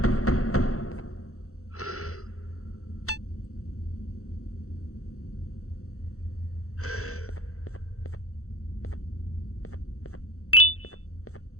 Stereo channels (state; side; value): late; right; 0.64 ms